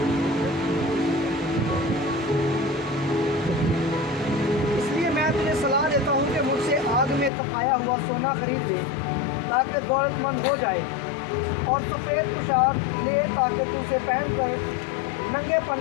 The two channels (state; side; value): drops out; right; at 7.3 s